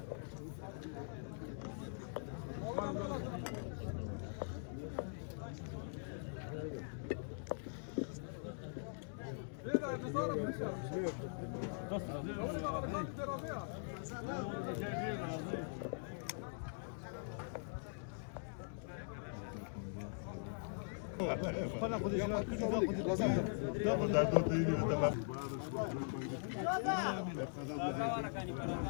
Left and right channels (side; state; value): right; silent; digital silence